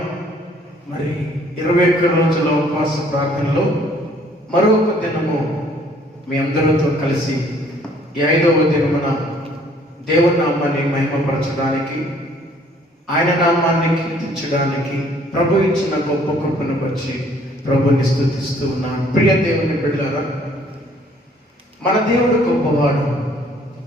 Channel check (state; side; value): normal; both; correlation 0.60